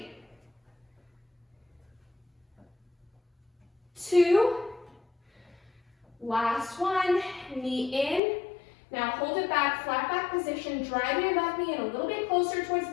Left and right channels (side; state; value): right; drops out; at 8.2 s